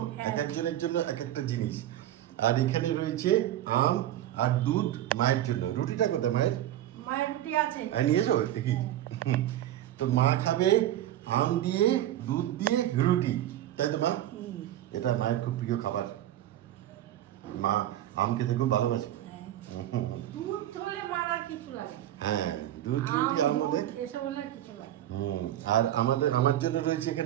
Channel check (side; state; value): left; quieter; 12.7 dB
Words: এক একজনের জন্য এক একটা জিনিস। আর এখানে রয়েছে আম আর দুধ মায়ের জন্য। রুটিটা কোথায় মায়ের? মায়ের রুটি আছে, নিয়েছো দেখি। তো মা খাবে আম দিয়ে, দুধ দিয়ে রুটি, তাই তো মা? এটা মায়ের খুব প্রিয় খাবার। মা আম খেতে খুব ভালোবাসে। দুধ হলে মার আর কিছু লাগে। হ্যাঁ, দুধ রুটি আম হলে এসব হলে কিছু লাগে। আর আমার জন্য রয়েছে